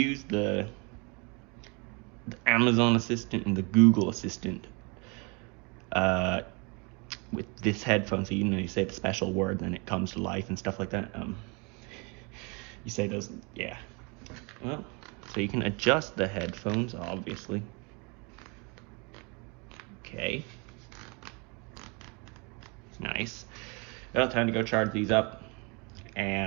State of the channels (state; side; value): quieter; left; 30.9 dB